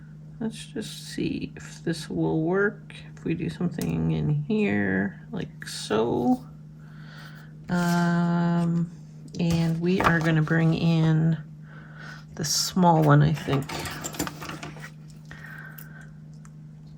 Let's just see if this will work. If we do something in here, like so. And we are going to bring in the small one, I think.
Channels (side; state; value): both; identical; correlation 1.00